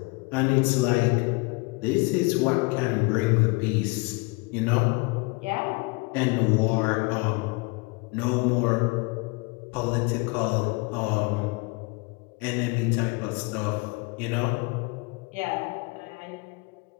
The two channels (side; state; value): right; quieter; 28.1 dB